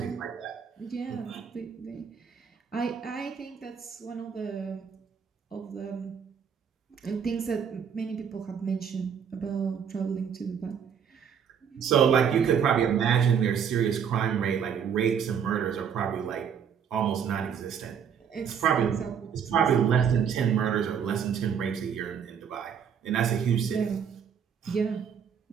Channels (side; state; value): left; quieter; 7.5 dB